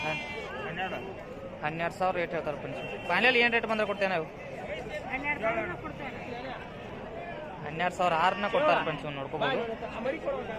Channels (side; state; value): both; identical; correlation 1.00